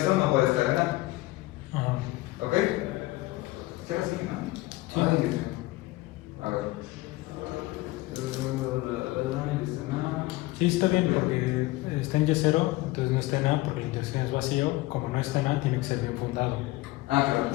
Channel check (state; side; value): quieter; right; 19.5 dB